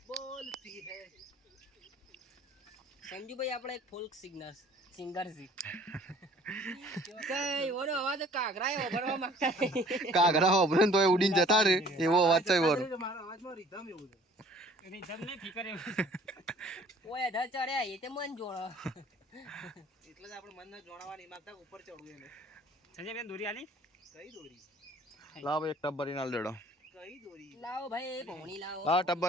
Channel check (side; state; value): both; normal; correlation 0.53